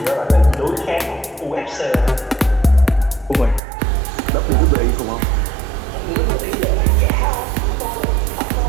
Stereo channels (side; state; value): left; drops out; at 3.6 s